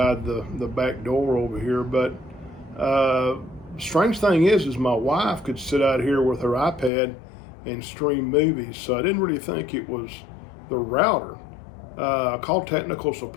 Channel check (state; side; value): drops out; right; at 6.9 s